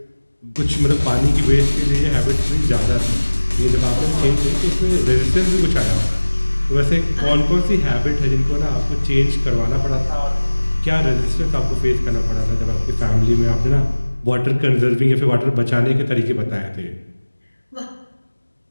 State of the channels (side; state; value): both; inverted; correlation -1.00